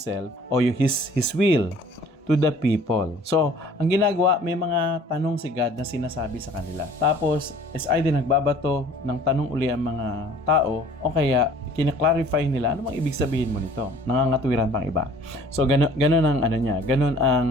or His will to the people. So, ang ginagawa, may mga tanong si God na sinasabi sa kanila. Tapos, is either nagbabato ng tanong uli ang mga tao o kaya kina-clarify nila ano bang ibig sabihin mo nito. Nangangatwiran pang iba. So, ganun ang ganun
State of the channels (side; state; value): both; normal; correlation 0.51